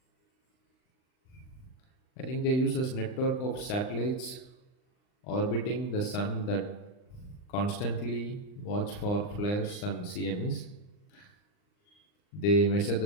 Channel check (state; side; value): late; right; 39 ms